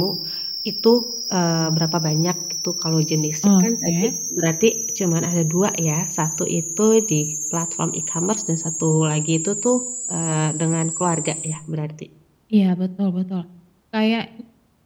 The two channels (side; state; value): both; identical; correlation 1.00